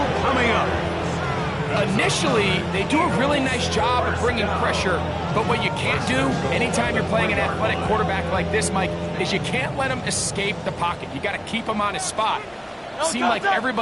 coming up. Initially, they do a really nice job of bringing pressure, but what you can't do anytime you're playing an athletic quarterback like this, Mike, is you can't let him escape the pocket. You got to keep him on his spot. Seemed like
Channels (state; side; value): identical; both; correlation 1.00